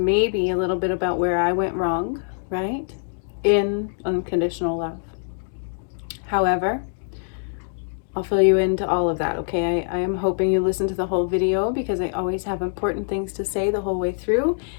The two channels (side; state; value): right; silent; digital silence